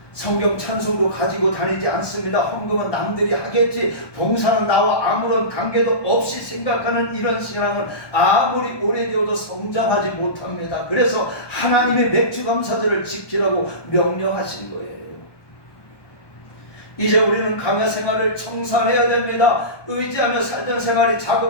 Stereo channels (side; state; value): right; late; 1.2 ms